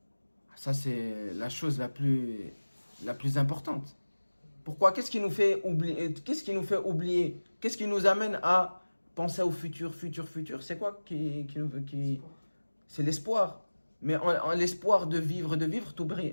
Ça, c'est la chose la plus importante. Pourquoi? Qu'est-ce qui nous fait oublier? Qu'est-ce qui nous amène à penser au futur? C'est quoi C'est l'espoir. Mais en l'espoir de vivre,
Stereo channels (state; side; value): inverted; both; correlation -1.00